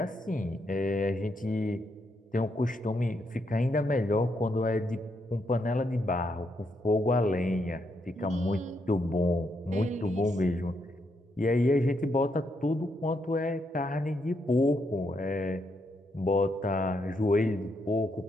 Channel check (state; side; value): normal; both; correlation 0.79